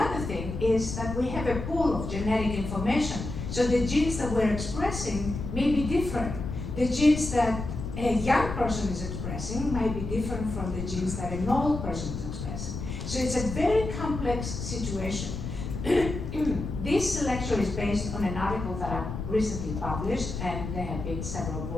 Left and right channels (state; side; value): noise; left; rumble, 6 dB below the sound